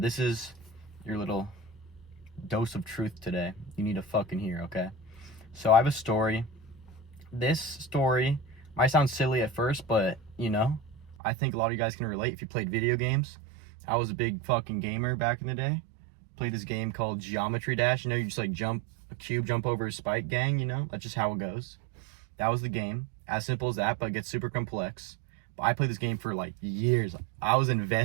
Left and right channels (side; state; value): left; drops out; at 11.2 s